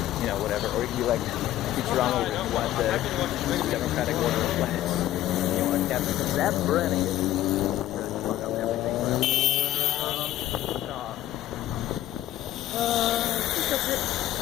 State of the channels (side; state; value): right; quieter; 13.7 dB